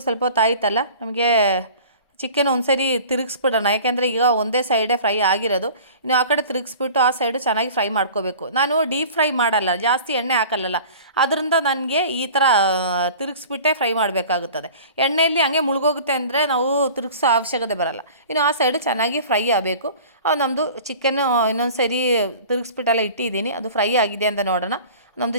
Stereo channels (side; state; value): both; inverted; correlation -0.43